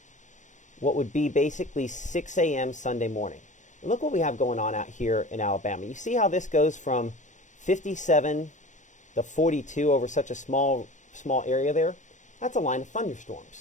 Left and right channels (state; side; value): late; right; 0.36 ms